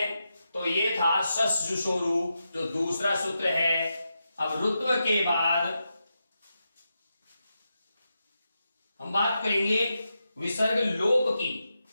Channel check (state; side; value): inverted; both; correlation -0.87